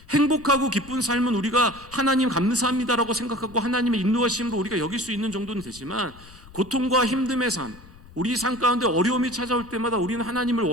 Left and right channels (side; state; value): left; noise; rumble, 21 dB below the sound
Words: 행복하고 기쁜 삶은 우리가 하나님 감사합니다라고 생각하고 하나님의 인도하심으로 우리가 여길 수 있는 정도는 되지만, 고통과 힘듦의 삶, 우리 삶 가운데 어려움이 찾아올 때마다 우리는 하나님을